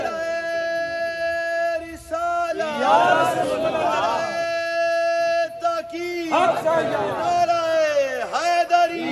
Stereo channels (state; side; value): identical; both; correlation 1.00